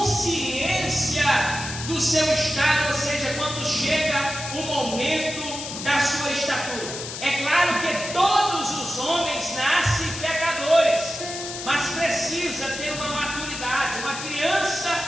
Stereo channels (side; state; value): left; noise; hiss, 8 dB below the sound